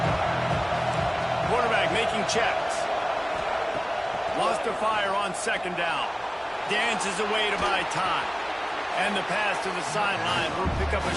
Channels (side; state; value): both; identical; correlation 1.00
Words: Quarterback making checks. Lost to fire on second down. Dances away to buy time. And the pass to the sideline will pick up a